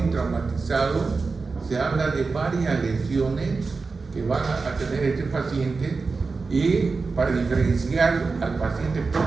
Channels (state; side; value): quieter; left; 4.3 dB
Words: se habla de varias lesiones que van a tener este paciente, y para diferenciar al paciente